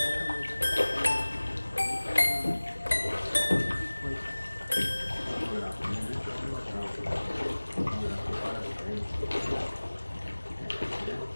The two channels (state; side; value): inverted; both; correlation -1.00